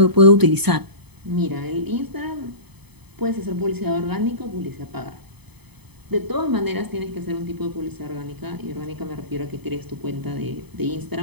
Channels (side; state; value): left; late; 0.98 ms